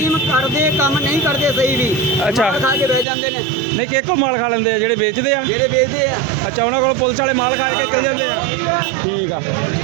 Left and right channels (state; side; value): drops out; left; at 3.1 s